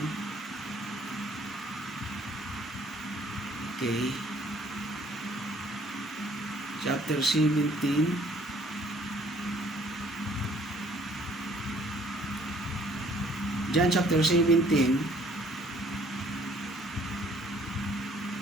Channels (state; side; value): normal; both; correlation 0.60